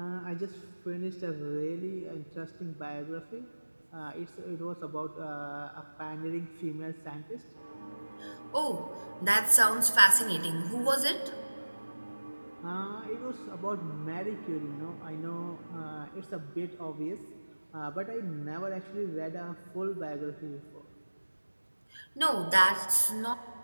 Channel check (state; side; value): inverted; both; correlation -1.00